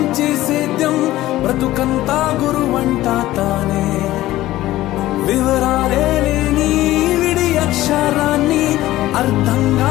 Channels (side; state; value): right; quieter; 15.8 dB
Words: సేద్యం బ్రతుకంతా గురువంట తానే వివరాలే లేని విడి అక్షరాన్ని అర్థంగా